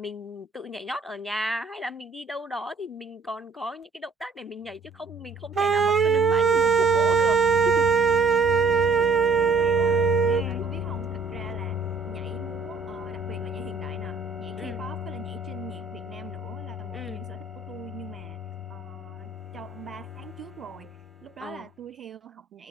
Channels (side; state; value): left; quieter; 4.2 dB